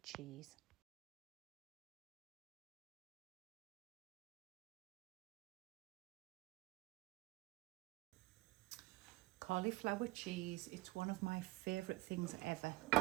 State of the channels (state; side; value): quieter; left; 20.5 dB